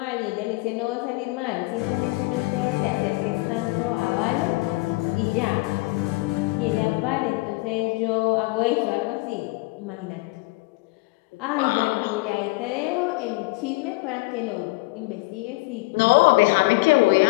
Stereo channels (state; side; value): quieter; right; 24.2 dB